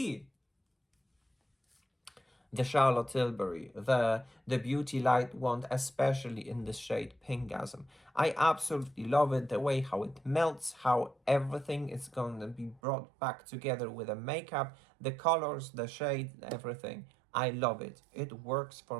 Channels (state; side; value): drops out; left; at 12.8 s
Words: the Charlotte Tilbury, the Beauty Light Wand, especially in the shade Pinkgasm. I absolutely love it, the way how it melts, how everything is going to be brought back together with the makeup, the colors, the shade, everything. I love it. It works for